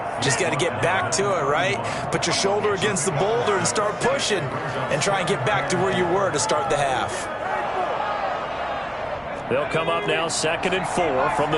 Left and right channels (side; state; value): both; identical; correlation 1.00